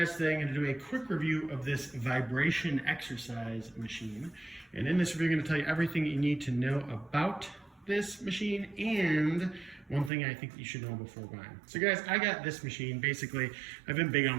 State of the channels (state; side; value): drops out; left; at 10.1 s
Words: Today I'm going to do a quick review of this vibration exercise machine. And in this review, I'm going to tell you everything you need to know about this machine and one thing I think you should know before buying. So guys, I got this machine. Basically, I've been big